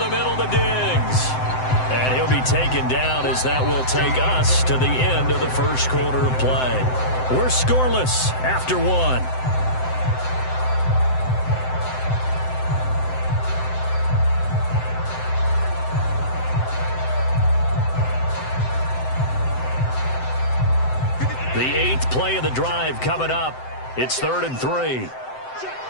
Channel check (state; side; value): late; right; 7.8 ms